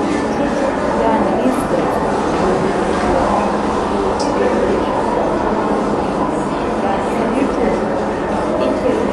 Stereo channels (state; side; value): identical; both; correlation 1.00